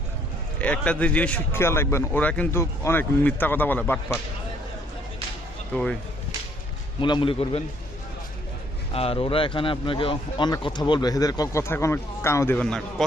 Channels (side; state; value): both; normal; correlation 0.65